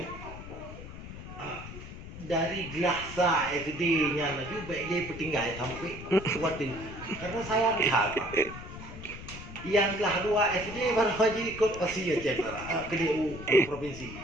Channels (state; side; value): noise; left; rumble, 12 dB below the sound